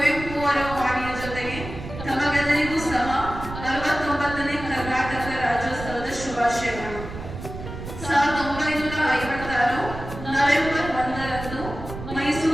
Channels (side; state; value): right; noise; rumble, 10 dB below the sound